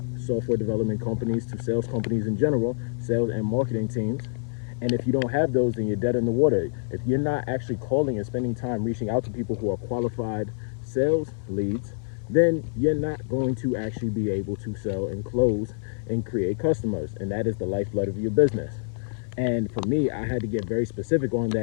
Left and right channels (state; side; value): silent; right; 58 dB below the other